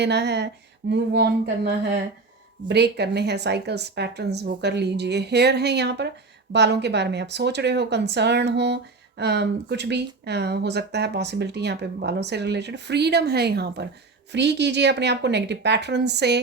है, मूव ऑन करना है, ब्रेक करने हैं साइकिल्स, पैटर्न्स, वो कर लीजिए। हेयर है यहाँ पर, बालों के बारे में आप सोच रहे हो, कंसर्न हो, कुछ भी हो सकता है पॉसिबिलिटी यहाँ पे बालों से रिलेटेड। फ्रीडम है यहाँ पर, फ्री कीजिए अपने आप को नेगेटिव पैटर्न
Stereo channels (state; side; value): quieter; left; 3.8 dB